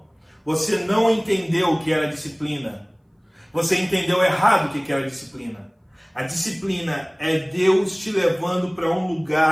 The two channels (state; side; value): identical; both; correlation 1.00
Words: você não entendeu o que era disciplina. Você entendeu errado o que era disciplina. A disciplina é Deus te levando para um